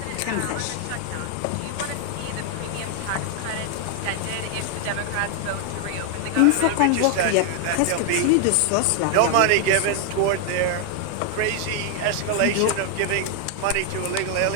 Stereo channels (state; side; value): different; both; correlation 0.00